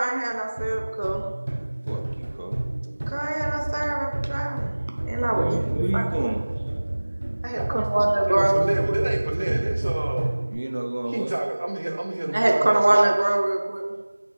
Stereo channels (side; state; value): both; inverted; correlation -1.00